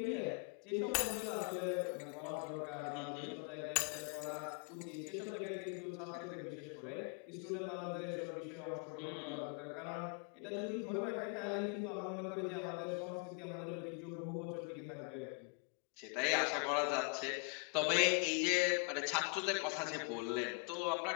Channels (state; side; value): quieter; right; 37.1 dB